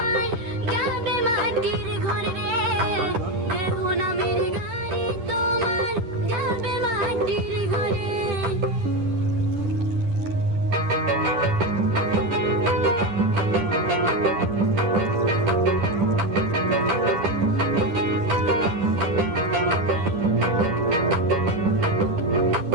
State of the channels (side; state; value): left; late; 10 ms